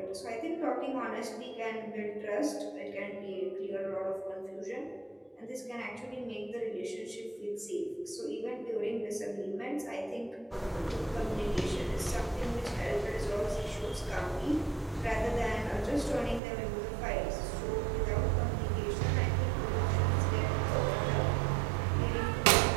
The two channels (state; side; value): drops out; left; at 16.4 s